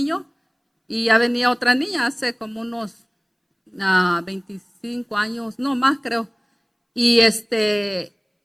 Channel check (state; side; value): identical; both; correlation 1.00